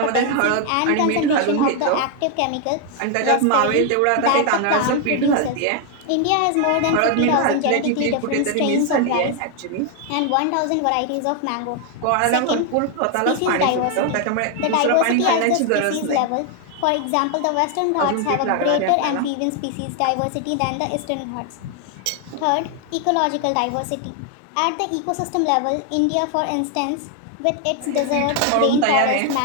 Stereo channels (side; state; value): both; different; correlation 0.00